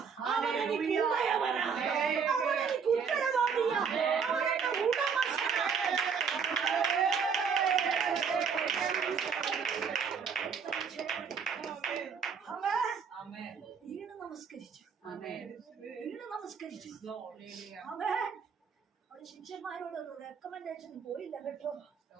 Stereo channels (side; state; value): left; quieter; 6.2 dB